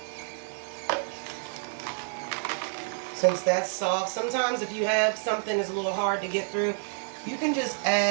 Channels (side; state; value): left; silent; digital silence